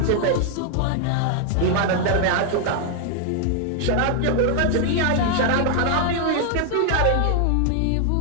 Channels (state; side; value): different; both; correlation 0.00